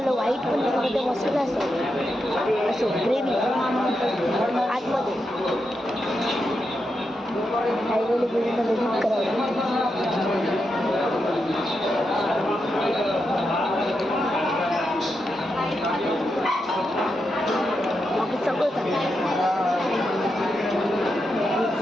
व्हाईट पण त्यामध्ये मसाला असेल असो ग्रेव्ही आतमध्ये हायवेली ग्रेव्हीला एडिट करावं बाकी सगळं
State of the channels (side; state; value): both; normal; correlation 0.86